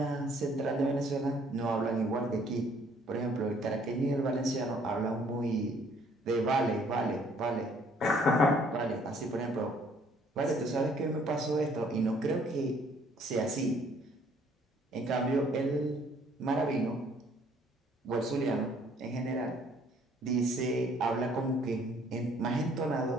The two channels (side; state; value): both; normal; correlation 0.61